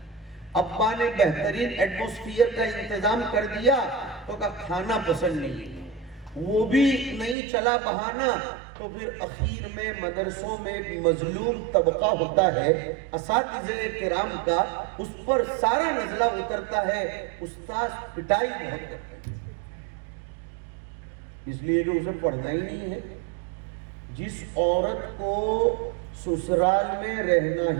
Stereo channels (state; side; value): drops out; left; at 7.4 s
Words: ابا نے بہترین ایٹموسفیئر کا انتظام کر دیا تو کھانا پسند نہیں، وہ بھی نہیں چلا بہانہ، تو پھر اخیر میں مدرسوں میں ایک مظلوم طبقہ ہوتا ہے اساتذہ کرام کا، اس پر سارا نزلہ اترتا ہے، استاذ پٹائی بہت کرتے ہیں، اس لیے کہ اسے پڑھنا ہی نہیں ہے۔ جس عورت کو سسرال میں رہنا